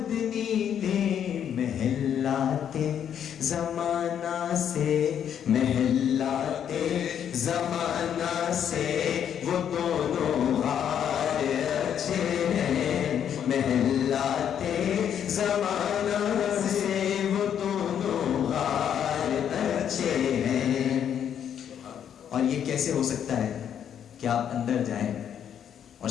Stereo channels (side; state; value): right; quieter; 9.0 dB